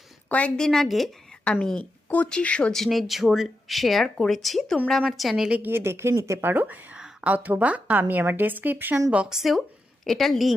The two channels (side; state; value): both; normal; correlation 0.87